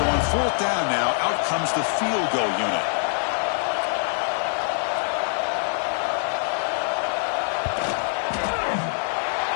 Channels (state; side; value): silent; right; 62 dB below the other